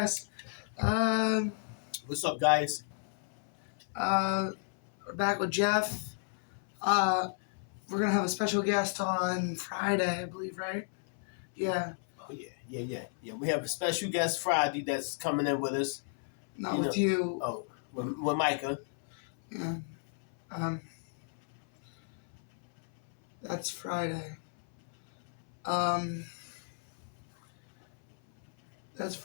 What's up, guys? We're back with Jeff. We're gonna have a special guest on Friday, I believe, right? Yeah, Oh yeah. We have a special guest Friday that's coming in with us. not with you. Oh, with Micah. Yeah. That's Friday. That's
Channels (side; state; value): right; silent; 56 dB below the other